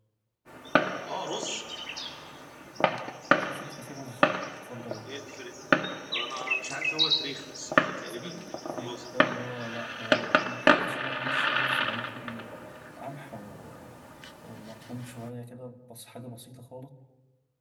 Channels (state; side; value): identical; both; correlation 1.00